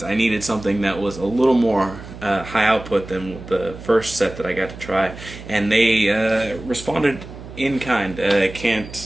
I needed something that was a little more high output than the first set that I got to try, and they responded in kind. I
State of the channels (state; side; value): noise; right; hum, 14 dB below the sound